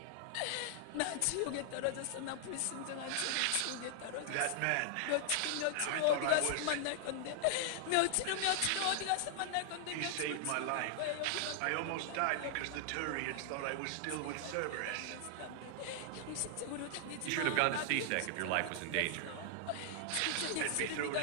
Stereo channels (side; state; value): both; different; correlation 0.00